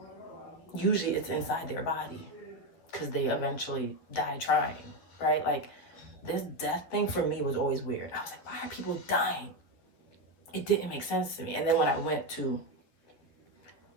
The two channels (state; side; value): late; right; 11 ms